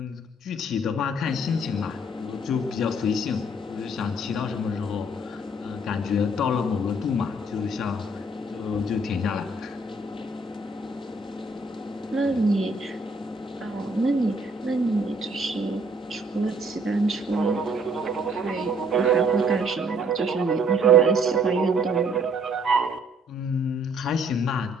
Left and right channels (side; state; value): both; normal; correlation 0.64